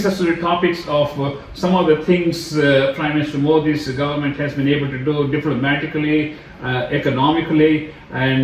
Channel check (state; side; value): identical; both; correlation 1.00